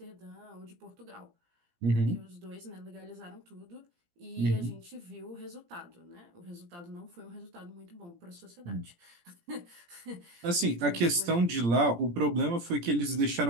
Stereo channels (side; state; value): left; late; 17 ms